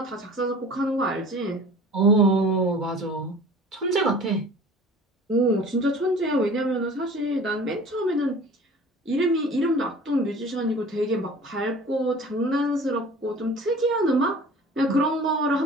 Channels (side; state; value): both; normal; correlation 0.44